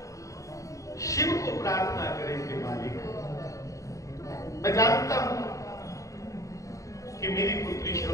शिव को प्रार्थना करें कि मालिक, मैं जानता हूं कि मेरी पुत्री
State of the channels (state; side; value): late; right; 0.16 ms